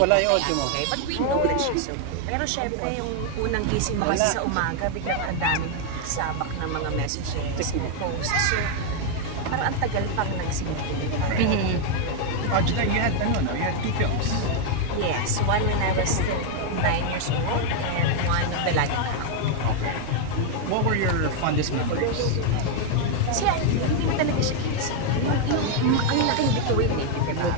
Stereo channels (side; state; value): both; different; correlation 0.00